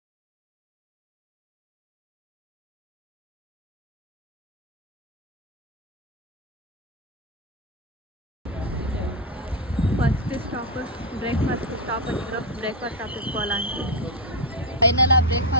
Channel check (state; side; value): normal; both; correlation 0.06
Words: ஃபஸ்ட்டு ஸ்டாப்பு பிரேக்ஃபாஸ்ட்டு ஸ்டாப் பண்ணிக்கிறோம். பிரேக்ஃபாஸ்ட் சாப்பிட்டு போகலான்ட்டு ஃபைனலாக